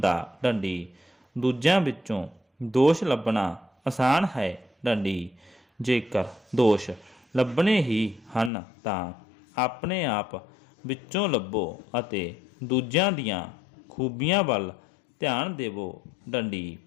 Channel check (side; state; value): right; drops out; at 8.5 s